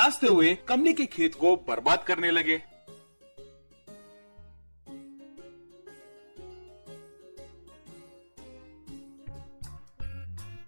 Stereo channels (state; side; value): inverted; both; correlation -1.00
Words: हुए कमली के खेत को बर्बाद करने लगे।